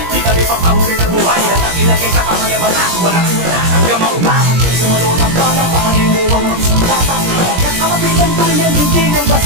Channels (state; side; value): late; left; 17 ms